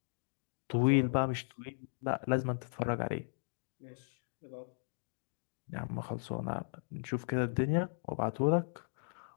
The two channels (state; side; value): silent; right; digital silence